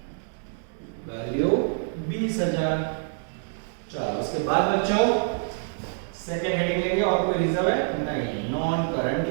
वैल्यू 20,000। चलो उसके बाद बच्चों सेकंड हेडिंग लेंगे, और कोई रिजर्व है नहीं, नॉन करंट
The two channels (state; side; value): silent; left; 61 dB below the other